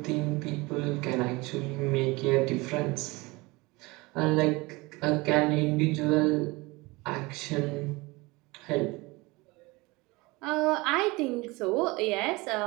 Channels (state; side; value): quieter; left; 23.5 dB